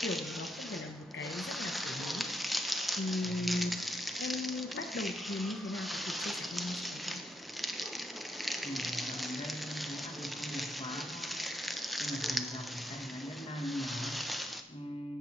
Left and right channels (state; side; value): normal; both; correlation 0.80